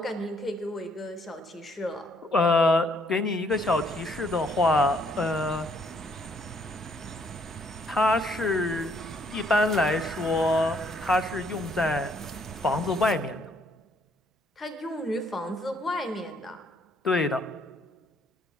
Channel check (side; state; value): both; normal; correlation 0.67